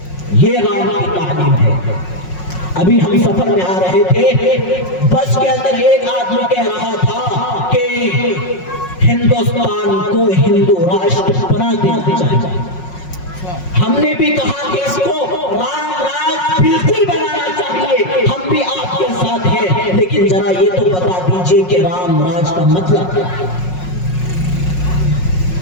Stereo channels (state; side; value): late; right; 5.5 ms